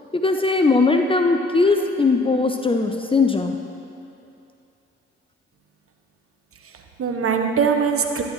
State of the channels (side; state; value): both; normal; correlation 0.53